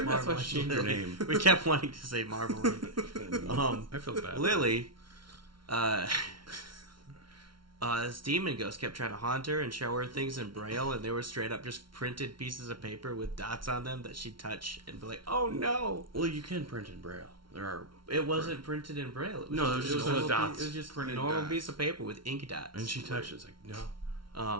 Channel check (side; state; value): left; late; 0.73 ms